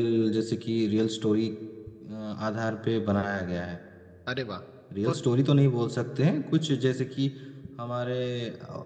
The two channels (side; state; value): both; identical; correlation 1.00